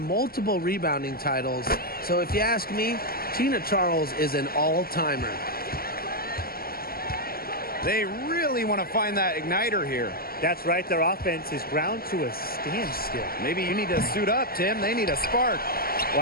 multiple rebounding titles. So if you ask me, Tina Charles is an all-timer. They really want to find that igniter here. That's right. Their offense is ground to a standstill. Maybe you need to suit up, Tim. They need a spark.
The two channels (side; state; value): right; late; 0.44 ms